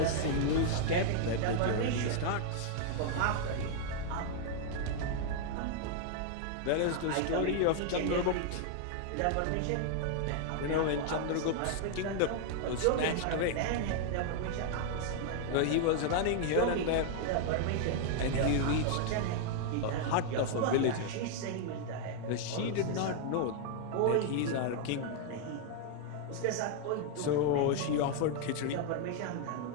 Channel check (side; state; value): both; different; correlation 0.00